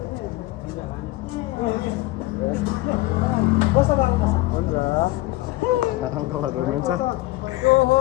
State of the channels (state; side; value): quieter; right; 18.9 dB